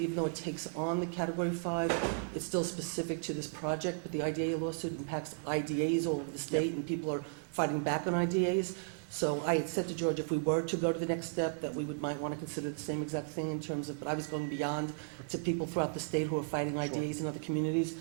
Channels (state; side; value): silent; left; digital silence